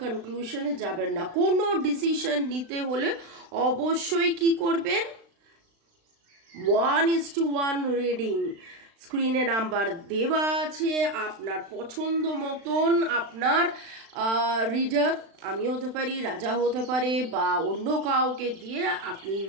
কনক্লুশনে যাবেন না। কোনো ডিসিশন নিতে হলে অবশ্যই কি করবেন? 1:1 রিডিং। স্ক্রিনে নাম্বার দেওয়া আছে, আপনার পছন্দ মতন আপনার রিডার, আমি হতে পারি, রাজা হতে পারে, বা অন্য কাউকে দিয়ে আপনি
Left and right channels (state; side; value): late; left; 36 ms